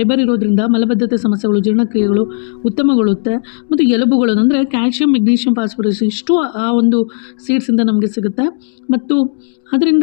ಇರೋದ್ರಿಂದ ಮಲಬದ್ಧತೆ ಸಮಸ್ಯೆಗಳು, ಜೀರ್ಣಕ್ರಿಯೆಗಳು ಉತ್ತಮಗೊಳ್ಳುತ್ತೆ. ಮತ್ತು ಎಲುಬುಗಳನ್ನು ಅಂದರೆ ಕ್ಯಾಲ್ಶಿಯಂ, ಮೆಗ್ನೀಷಿಯಂ, ಫಾಸ್ಫರಸ್ ಇಷ್ಟು ಆ ಒಂದು ಸೀಡ್ಸಿಂದ ನಮಗೆ ಸಿಗುತ್ತೆ. ಮತ್ತು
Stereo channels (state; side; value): silent; right; digital silence